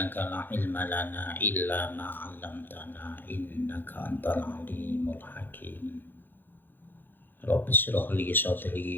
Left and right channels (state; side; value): late; right; 0.094 ms